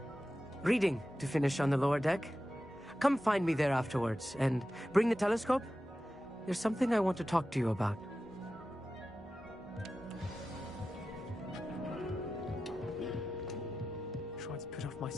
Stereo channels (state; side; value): normal; both; correlation 0.93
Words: reading to finish on the lower deck. Come find me there afterwards, and bring the telescope. There's something I want to talk to you about. Tried to put off my